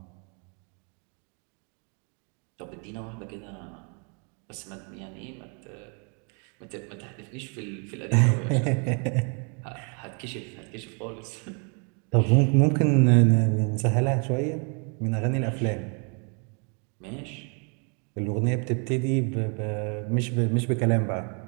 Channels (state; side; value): quieter; left; 37.6 dB